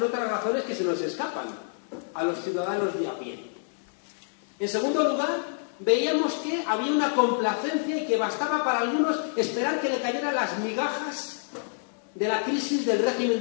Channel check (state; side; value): silent; right; digital silence